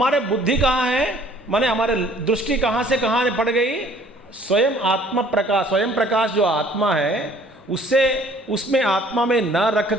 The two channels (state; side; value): normal; both; correlation 0.56